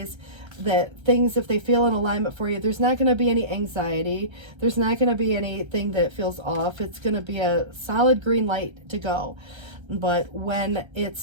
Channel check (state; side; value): late; left; 1.3 ms